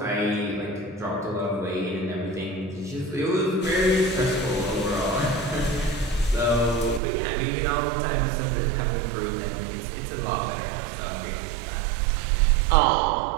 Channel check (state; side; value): drops out; left; at 7.0 s